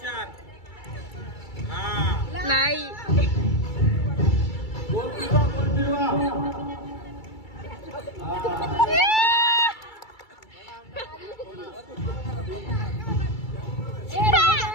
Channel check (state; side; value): late; right; 2.3 ms